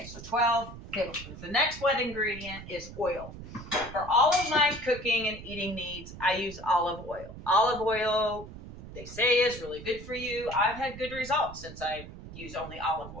so 12 tablespoons. The next wet ingredient is oil. For all of my cooking and eating needs, I use olive oil. Olive oil, they say, is really good for you. I've had good results since I use only olive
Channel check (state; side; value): noise; right; rumble, 13 dB below the sound